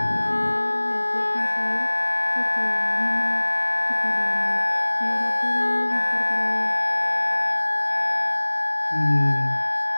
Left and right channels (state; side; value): inverted; both; correlation -1.00